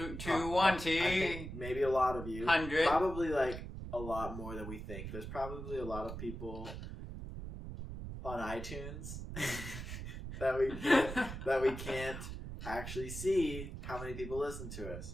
two. I think maybe a lot of you. 100. Probably like a lot more than we think. There's probably a lot of people on iTunes that we can't actually see how many people listen to us.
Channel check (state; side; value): noise; right; rumble, 8 dB below the sound